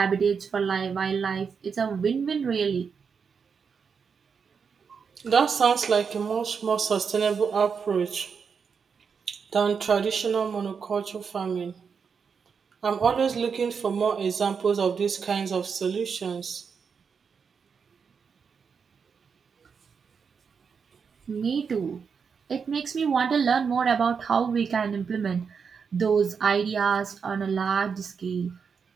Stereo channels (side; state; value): left; quieter; 6.1 dB